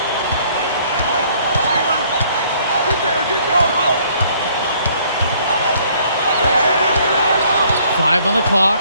Five on the clock.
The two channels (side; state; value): both; inverted; correlation -0.61